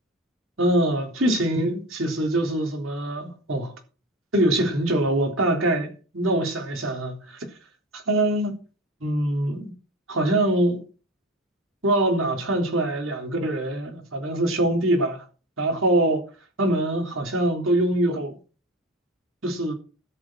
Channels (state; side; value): normal; both; correlation 0.30